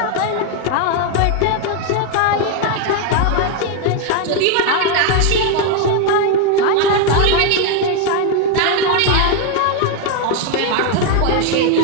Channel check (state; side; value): different; both; correlation 0.01